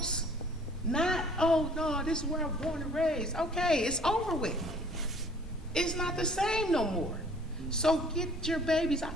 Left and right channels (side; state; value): both; normal; correlation 0.54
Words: Not, oh no, this is where I'm born and raised. Okay, it's over with. It's not the same no more. So get your babies.